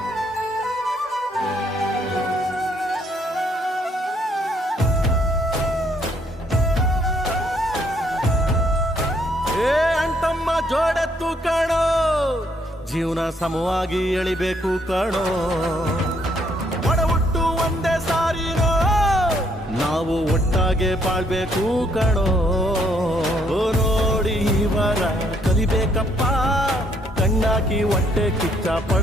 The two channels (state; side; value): normal; both; correlation 0.69